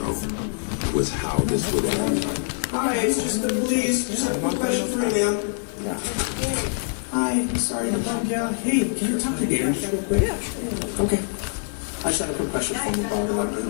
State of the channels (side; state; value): right; silent; digital silence